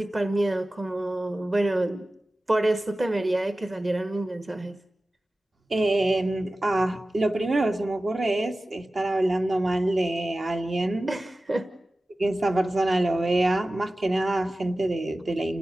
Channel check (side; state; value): both; normal; correlation 0.96